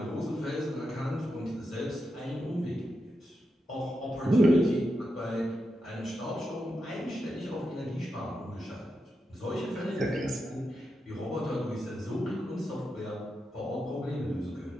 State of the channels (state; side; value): normal; both; correlation 0.87